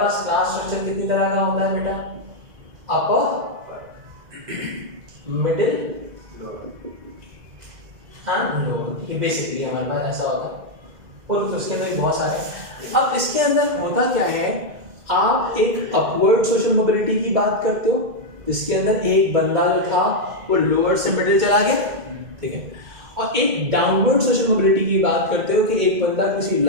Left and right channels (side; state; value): left; late; 2.0 ms